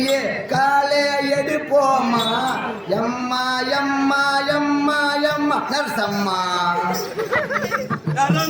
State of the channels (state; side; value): identical; both; correlation 1.00